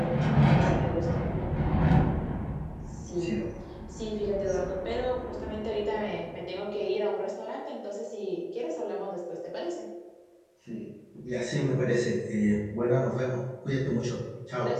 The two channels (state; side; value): identical; both; correlation 1.00